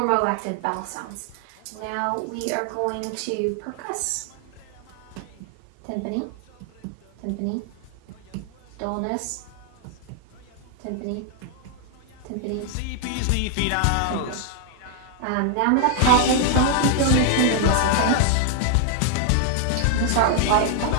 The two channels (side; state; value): both; different; correlation 0.00